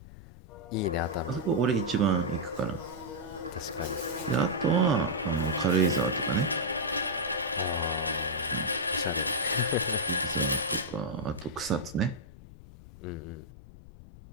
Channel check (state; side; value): noise; left; rumble, 18 dB below the sound